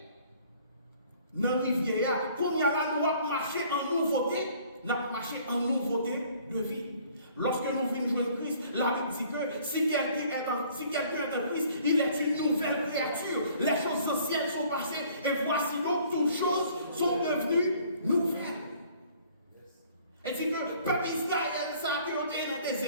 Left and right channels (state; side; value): inverted; both; correlation -0.56